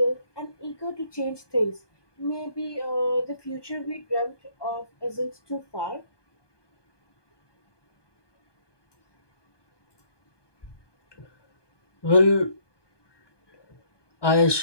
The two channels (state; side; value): late; right; 1.2 ms